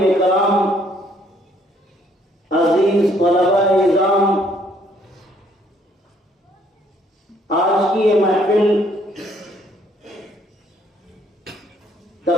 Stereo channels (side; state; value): both; normal; correlation 0.65